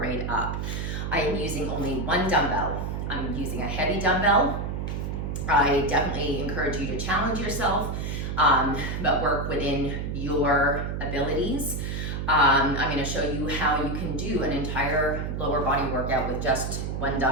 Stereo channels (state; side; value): noise; right; hum, 3 dB below the sound